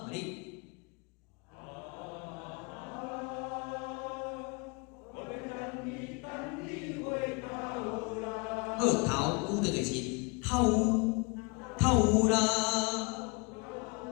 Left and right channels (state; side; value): quieter; right; 29.9 dB